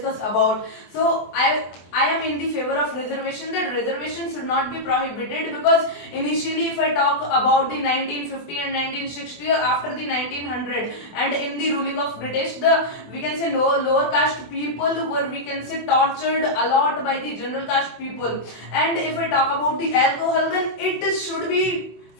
about. So I am in the favor of reservation, that reservation should not be prohibited, because initially if I talk about the 1950 and 1960 or after the 1900 and in the ruling of British, the we can say lower caste people were, we can say, tortured a lot by the general caste people. And if I talk about the alcohol, then it should be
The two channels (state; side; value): late; right; 24 ms